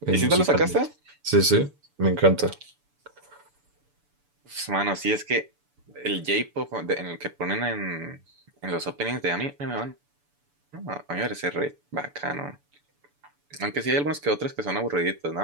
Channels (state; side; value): late; left; 6.9 ms